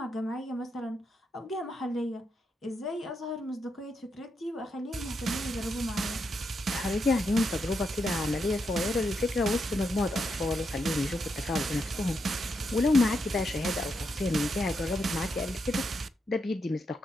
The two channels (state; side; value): normal; both; correlation 0.82